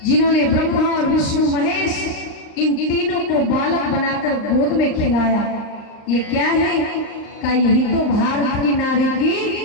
जिन्होंने ब्रह्मा और विष्णु महेश इन तीनों को बालक बनाकर गोद में खिलाया। ये क्या है? का यही तो भारत की नारी की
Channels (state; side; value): late; right; 39 ms